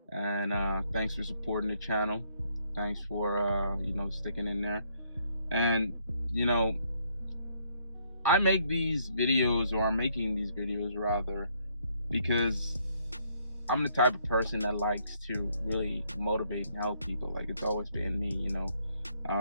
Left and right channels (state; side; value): inverted; both; correlation -0.70